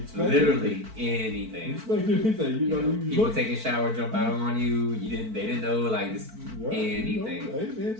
expect Literally anything. Expect anything. You know, people taking a shower, jump out on you. They didn't know like this. Yeah, anything. You know, hey man,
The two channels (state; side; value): late; left; 4.5 ms